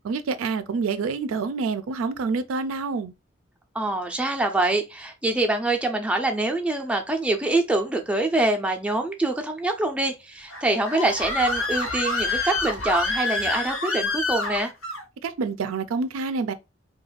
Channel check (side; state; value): both; normal; correlation 0.50